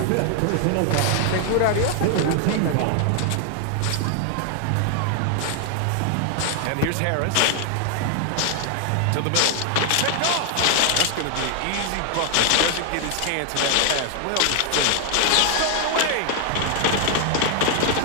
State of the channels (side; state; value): both; different; correlation 0.00